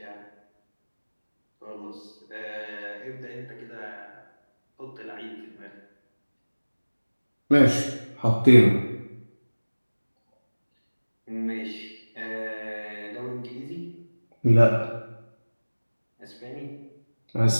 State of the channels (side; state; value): both; inverted; correlation -1.00